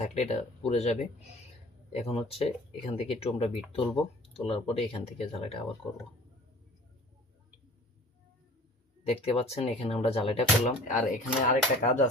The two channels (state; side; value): normal; both; correlation 0.46